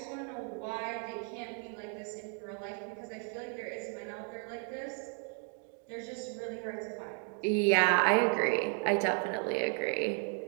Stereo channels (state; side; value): quieter; left; 38.6 dB